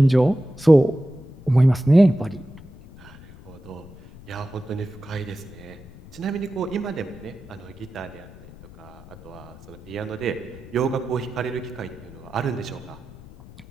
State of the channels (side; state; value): left; noise; rumble, 19 dB below the sound